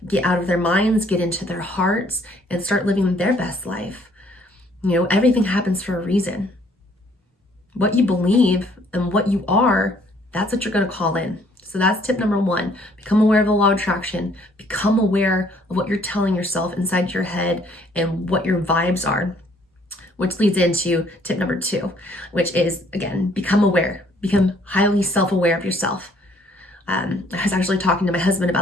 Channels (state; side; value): normal; both; correlation 0.63